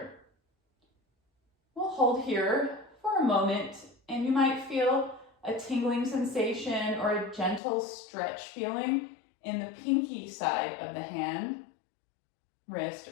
We'll hold here for a moment, and you might feel a tingling sensation or a gentle stretch feeling in the pinky side of the hand, wrist,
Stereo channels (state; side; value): drops out; right; at 7.6 s